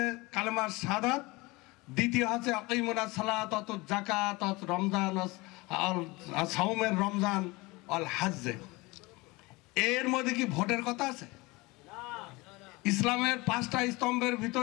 কালেমার শাহাদাত, দ্বিতীয় হচ্ছে আকিমুনাস সালাত ওয়া যাকাত ওয়া রমজান আর সাওমের রমজান আল হজ্জ। এর মধ্যে কি ভোটের কথা আছে? ইসলামের 5টা স্তম্ভের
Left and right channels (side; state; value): right; quieter; 23.4 dB